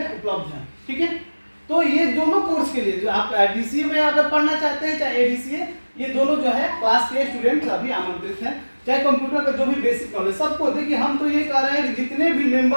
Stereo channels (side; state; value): both; inverted; correlation -1.00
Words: उपलब्ध है। ठीक है, तो ये दोनों कोर्स के लिए जो आप डीसीए में अगर पढ़ना चाहते हैं चाहे एडीसीए, ये दोनों जो है क्लास के स्टूडेंट अभी आमंत्रित हैं। चाहे कंप्यूटर का जो भी बेसिक नॉलेज सबको, देखिए हम तो ये कह रहे हैं कि जितने भी